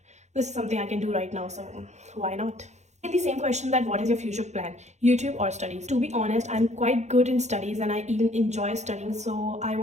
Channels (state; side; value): late; left; 0.33 ms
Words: this is something I can do right now, so why not? The same question, that what is your future plan, YouTube or studies? To be honest, I'm quite good in studies and I even enjoy studying, so I